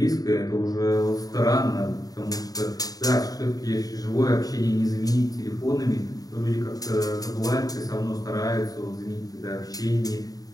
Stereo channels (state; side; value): late; right; 0.18 ms